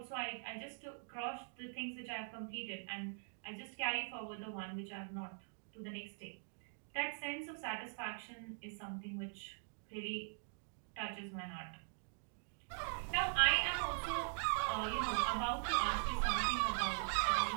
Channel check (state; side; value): silent; left; digital silence